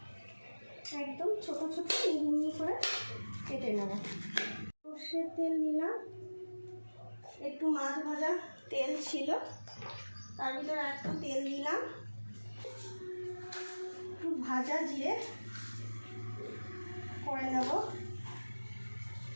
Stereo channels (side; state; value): both; inverted; correlation -1.00